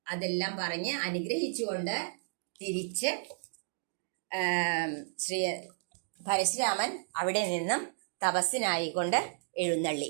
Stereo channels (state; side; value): silent; left; digital silence